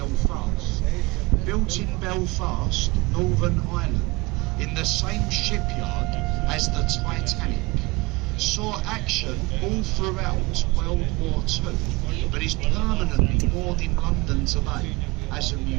built in Belfast, Northern Ireland, in the same shipyard as the Titanic. Saw action all throughout World War II, but is permanently moored in London today as a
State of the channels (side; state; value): left; quieter; 23.8 dB